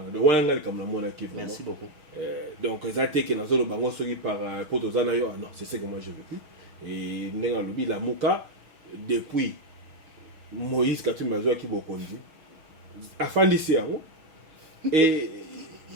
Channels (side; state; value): left; late; 6.3 ms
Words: donc wana nga likambo namonaki vraiment. Merci beaucoup. Donc eza te ke nazoloba ngo soki par po toza na yo non c'est ce que moi je vécu et ndenge alobi lamuka depuis Moïse Katumbi azwaki bokonzi afandisi yango et